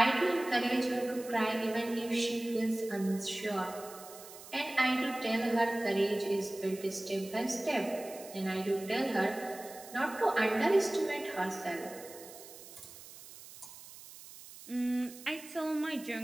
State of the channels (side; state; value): right; noise; hiss, 16 dB below the sound